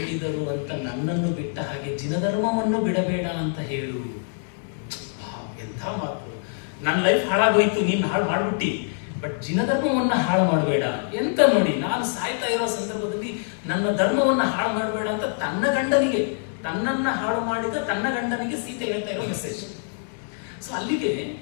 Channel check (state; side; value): silent; right; digital silence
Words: ಅಂತ ನನ್ನನ್ನು ಬಿಟ್ಟ ಹಾಗೆ ಜಿನಧರ್ಮವನ್ನು ಬಿಡಬೇಡ ಅಂತ ಹೇಳು. ಎಂಥ ಮಾತು! ನನ್ನ ಲೈಫ್ ಹಾಳಾಗೋಯ್ತು, ನೀನು ಹಾಳು ಮಾಡ್ಬಿಟ್ಟಿ, ಬಟ್ ಜಿನಧರ್ಮವನ್ನ ಹಾಳು ಮಾಡಬೇಡ. ಎಂತ ನೋಡಿ, ನಾನು ಸಾಯ್ತಾ ಇರೋ ಸಂದರ್ಭದಲ್ಲಿ ನನ್ನ ಧರ್ಮವನ್ನ ಹಾಳು ಮಾಡಬೇಡ ಅಂತ ತನ್ನ ಗಂಡನಿಗೆ, ತನ್ನನ್ನ ಹಾಳು ಮಾಡಿದ ತನ್ನ ಗಂಡನಿಗೆ ಸೀತೆ ಹೇಳ್ತಾ ಇರೋ ಮೆಸೇಜ್. ಸೊ ಅಲ್ಲಿಗೆ